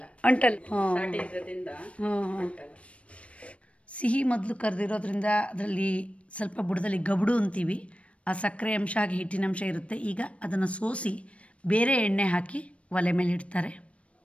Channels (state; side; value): late; right; 0.062 ms